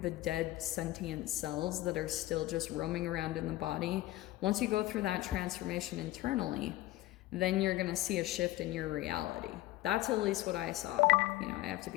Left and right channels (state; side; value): quieter; right; 17.0 dB